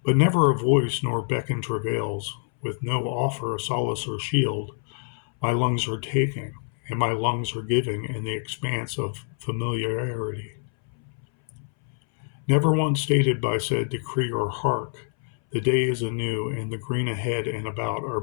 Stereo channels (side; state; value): right; silent; 61 dB below the other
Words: But never a voice nor beckon travails, with no offer of solace or shield, my lungs are taking, and my lungs are giving in the expanse of familiarity. Never once stated by said decree or hark, the day is anew, and the green ahead and about are